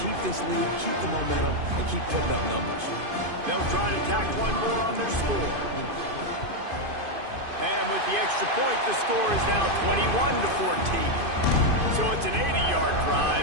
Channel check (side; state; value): left; late; 2.5 ms